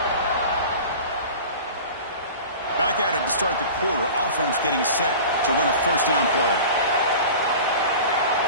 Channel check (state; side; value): inverted; both; correlation -0.37